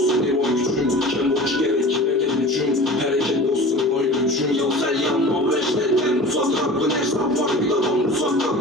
ne boy gücüm. Ken boş gerek neden gücüm. Hareket olsun boy gücüm. Yoksa yanma ve işletten uzaklar. Bu ne hesap var bir adam uzakta.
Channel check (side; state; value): both; normal; correlation 0.39